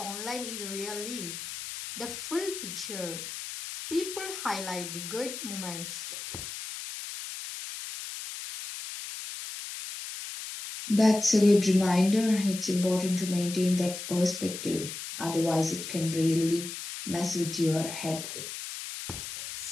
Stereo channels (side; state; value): left; noise; hiss, 8 dB below the sound